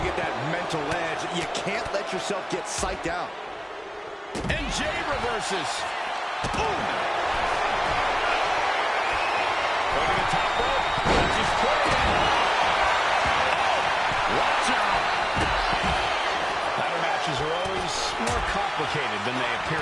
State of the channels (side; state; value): both; identical; correlation 1.00